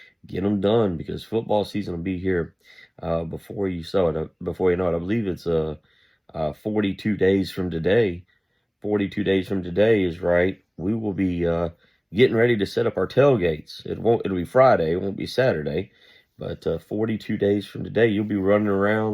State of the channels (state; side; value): identical; both; correlation 1.00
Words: Get them done because football season will be here before you Before you know it, I believe it's 42 days from today. 42 days from today is right. We will be getting ready to set up our tailgates. It'll be Friday. It won't be Saturday. But 42 days from today, you'll be running